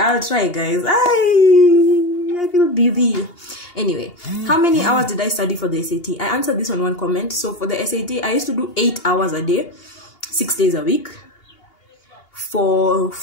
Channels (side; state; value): right; late; 2.8 ms